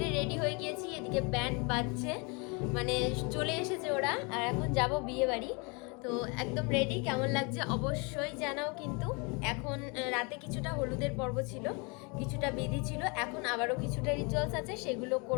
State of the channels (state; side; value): quieter; right; 31.2 dB